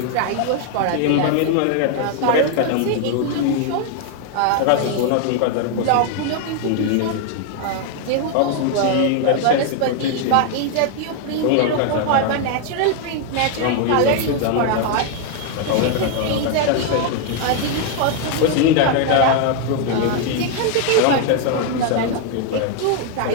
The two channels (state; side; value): different; both; correlation 0.00